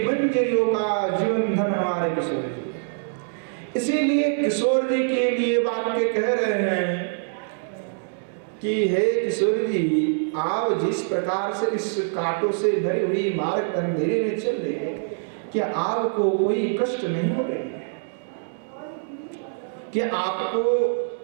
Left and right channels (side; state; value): left; silent; digital silence